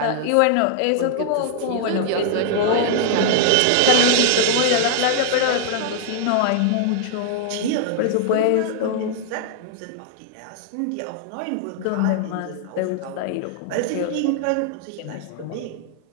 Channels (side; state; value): both; different; correlation 0.00